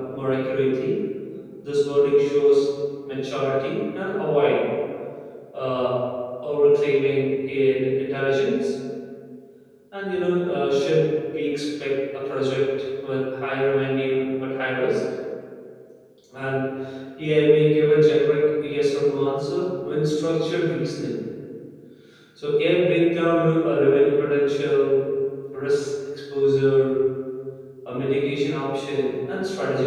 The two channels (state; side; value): identical; both; correlation 1.00